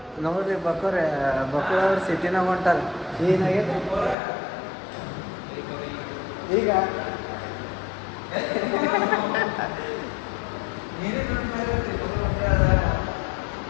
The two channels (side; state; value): right; drops out; at 4.2 s